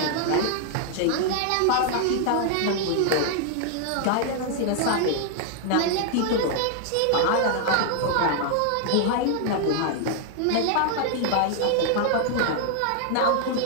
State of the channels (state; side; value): different; both; correlation 0.00